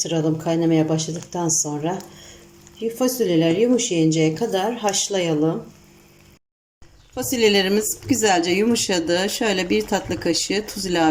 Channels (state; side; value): identical; both; correlation 1.00